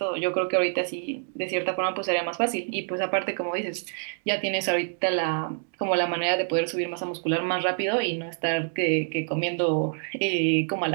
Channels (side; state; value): left; silent; 60 dB below the other